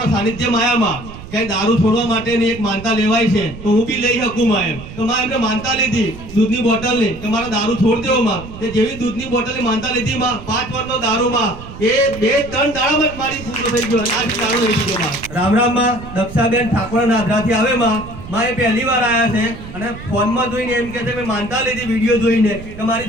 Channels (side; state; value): right; noise; rumble, 14 dB below the sound